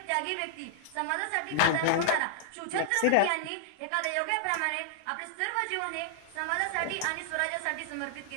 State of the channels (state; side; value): different; both; correlation -0.01